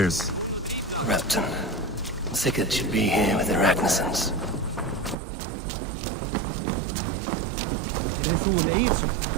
Rapton. Sigurd should be here with the Ragnarssons.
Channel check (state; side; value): drops out; left; at 5.2 s